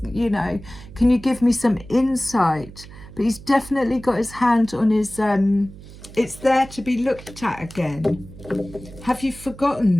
you know, can you give me some insight? But he's definitely got his hand on his it's there to be looked at again. Have you forgotten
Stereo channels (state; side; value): noise; right; hum, 17 dB below the sound